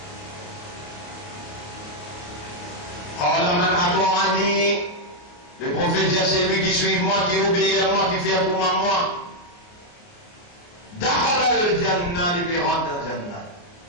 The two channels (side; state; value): right; late; 29 ms